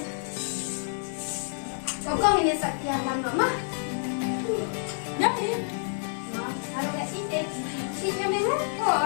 Kau ini sekian lama mah? Jadi, ada sih deh. Ini mana?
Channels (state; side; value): silent; right; digital silence